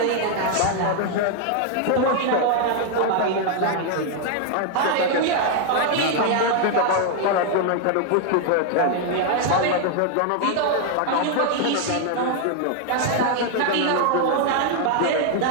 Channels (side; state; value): both; different; correlation 0.00